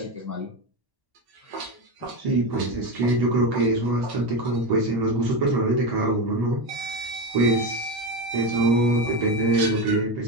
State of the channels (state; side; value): late; left; 1.1 ms